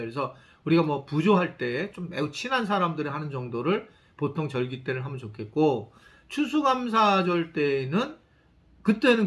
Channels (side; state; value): both; identical; correlation 1.00